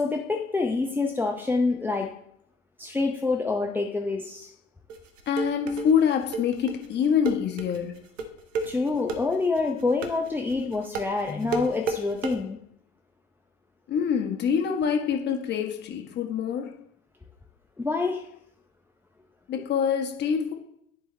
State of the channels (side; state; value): right; quieter; 4.5 dB